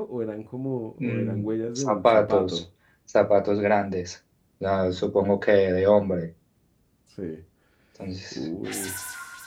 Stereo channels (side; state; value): both; identical; correlation 1.00